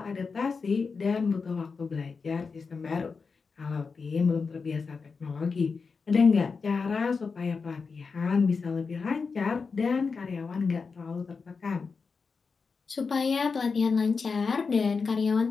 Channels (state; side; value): quieter; right; 4.9 dB